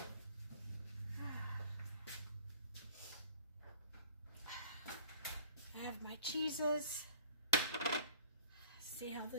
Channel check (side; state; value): both; inverted; correlation -0.50